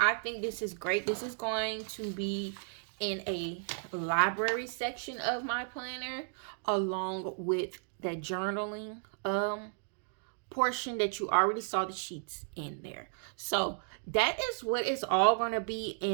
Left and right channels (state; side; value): silent; left; digital silence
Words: think this is great. This is going to be in a library section of my planner, along with that journaling portion that you already saw the sheets in there. So that is what is all going to be